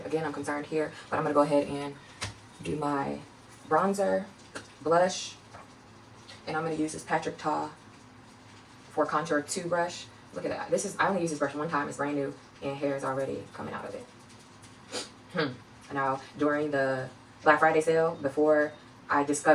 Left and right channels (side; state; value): both; identical; correlation 1.00